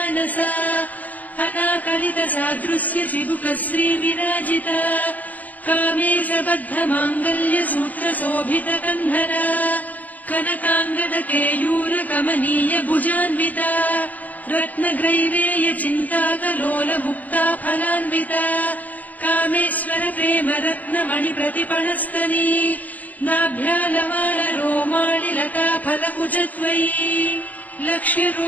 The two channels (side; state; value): right; late; 0.080 ms